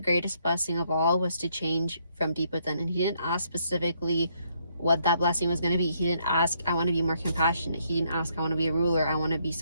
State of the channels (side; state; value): both; inverted; correlation -0.71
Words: blessing of all, was to change from deep within. And he didn't ask specifically what that blessing was going to be. He didn't ask, I want to be more compassionate. He didn't ask, I want to be a ruler. I want to be